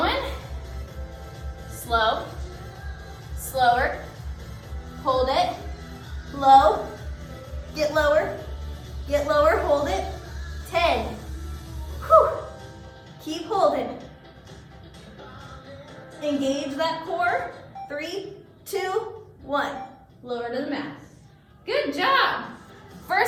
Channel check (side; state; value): both; identical; correlation 1.00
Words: Slow. Slower. Hold it. Low. Get lower. Get lower. Hold it. 10. Whew. Keep holding. Engage that core. 3, 2, 1. Lower to the mat. Good job.